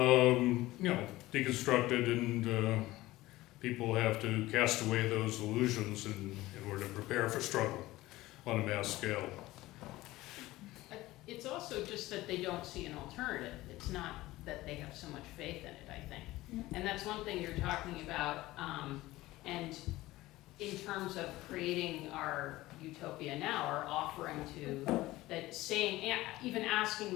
and people have to cast away those illusions in order to prepare for struggle on a mass scale. It's also just that they don't see an alternative. It's not that they have so much faith in it, I think. And that's one thing you're talking about, and in terms of creating our utopia now, or offering to, that saying, even asking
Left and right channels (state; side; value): quieter; right; 17.9 dB